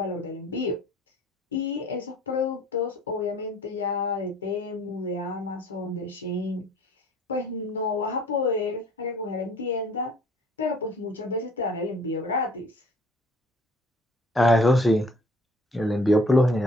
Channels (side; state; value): both; normal; correlation 0.54